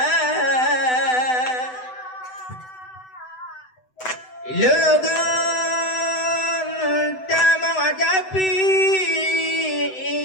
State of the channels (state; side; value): late; right; 7.9 ms